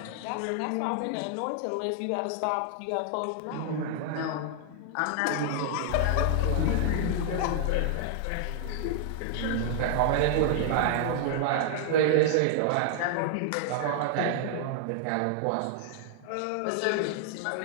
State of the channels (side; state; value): both; different; correlation 0.00